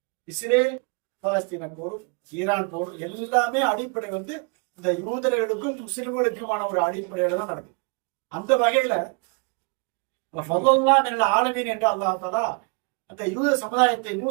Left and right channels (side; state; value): left; quieter; 34.7 dB